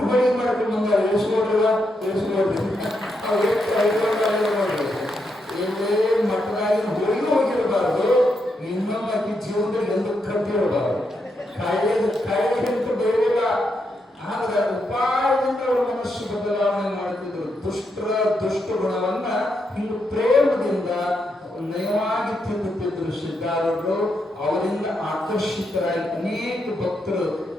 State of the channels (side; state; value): both; normal; correlation 0.82